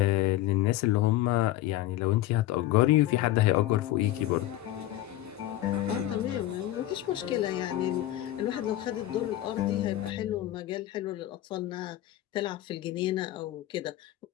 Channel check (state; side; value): quieter; right; 14.5 dB